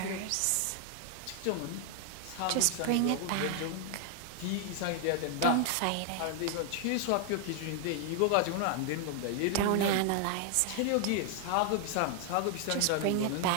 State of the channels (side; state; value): both; different; correlation 0.00